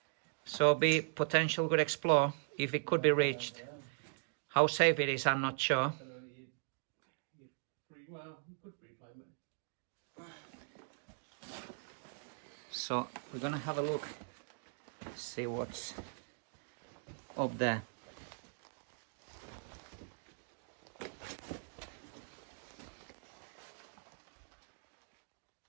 So be potential good explore if it could be reached. How safe it is, I'm not sure. So we're gonna have a look, see what's up there.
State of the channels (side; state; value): left; silent; digital silence